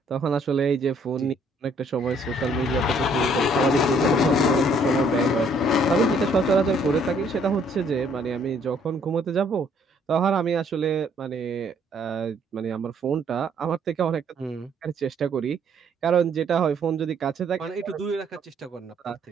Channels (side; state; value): both; normal; correlation 0.64